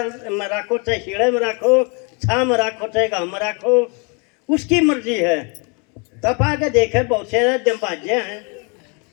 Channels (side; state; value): right; quieter; 33.4 dB